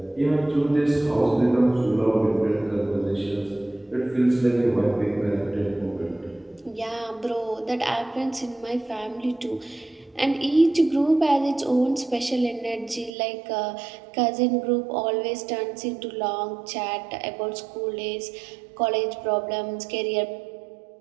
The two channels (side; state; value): left; drops out; at 13.1 s